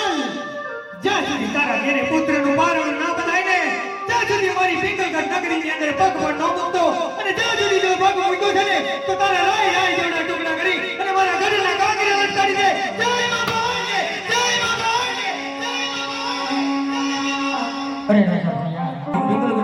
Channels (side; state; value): both; identical; correlation 1.00